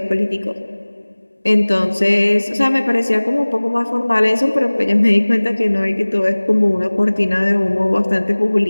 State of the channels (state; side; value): inverted; both; correlation -1.00